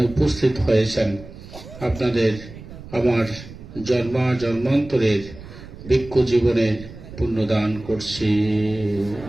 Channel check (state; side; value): noise; right; rumble, 15 dB below the sound